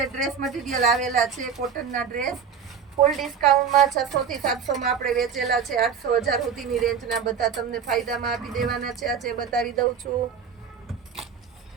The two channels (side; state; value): left; quieter; 6.9 dB